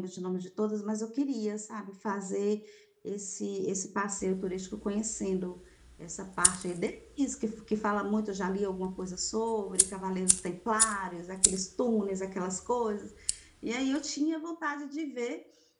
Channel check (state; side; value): identical; both; correlation 1.00